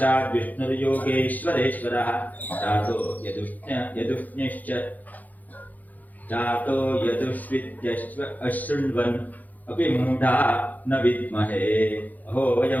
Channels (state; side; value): late; right; 0.081 ms